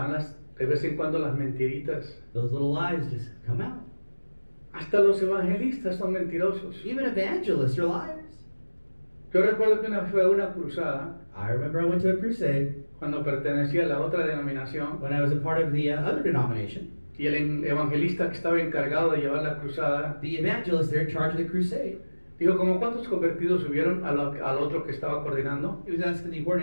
de vez en cuando las mentiritas. Those little lies just come out. Hasta los evangelistas son mentirosos. Even evangelists are liars. Yo recuerdo que una vez fue a una cruzada, I remember I went to a crusade cuando pertenecía a la otra denominación, when I was a part of the other denomination. y el evangelista que estaba encargado de llevar la cruzada, The evangelist there in charge of the crusade, dijo, ¿como cuántos convertidos hubieron al otro que estaba coordinando? he was asking the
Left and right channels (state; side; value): inverted; both; correlation -1.00